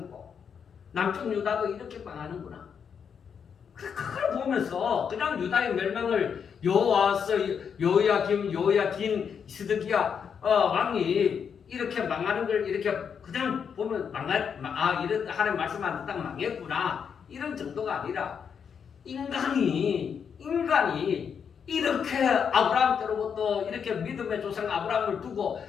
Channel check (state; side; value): quieter; right; 7.1 dB